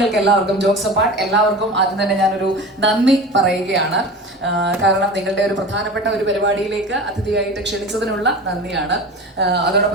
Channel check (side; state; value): both; normal; correlation 0.33